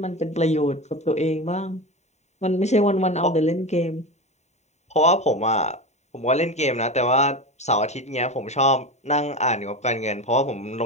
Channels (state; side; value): late; right; 0.32 ms